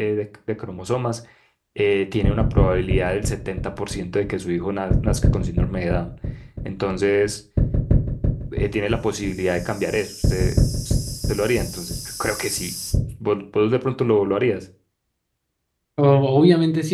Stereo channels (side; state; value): both; identical; correlation 1.00